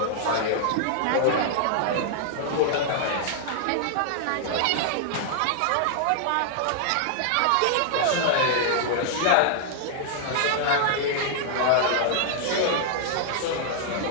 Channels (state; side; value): different; both; correlation -0.01